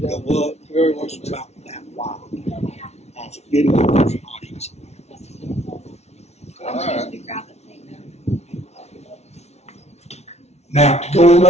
go up. It's about that wide. So getting up there is not easy. All right. Now, going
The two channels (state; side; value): late; right; 0.31 ms